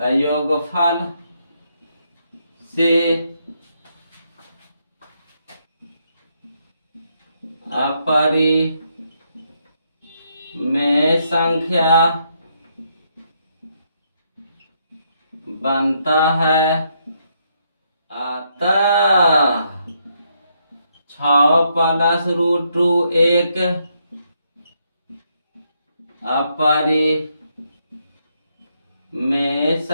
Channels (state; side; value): inverted; both; correlation -0.76